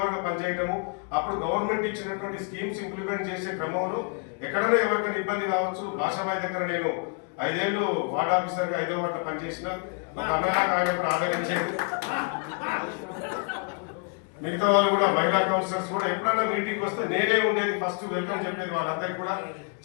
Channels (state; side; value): quieter; right; 37.5 dB